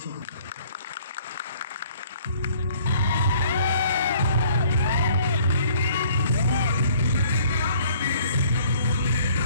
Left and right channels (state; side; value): inverted; both; correlation -0.57